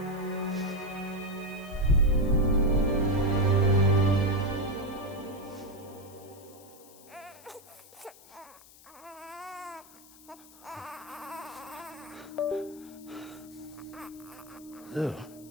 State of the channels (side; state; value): left; noise; hiss, 22 dB below the sound